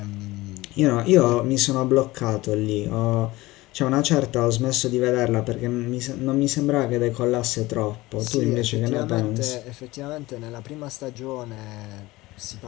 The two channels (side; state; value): right; quieter; 19.6 dB